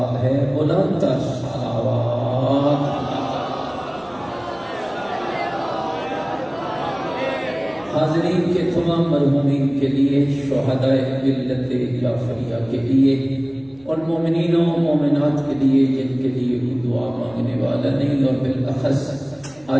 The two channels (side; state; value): right; noise; rumble, 29 dB below the sound